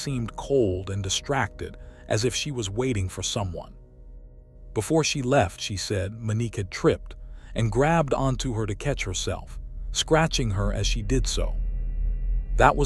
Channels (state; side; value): identical; both; correlation 1.00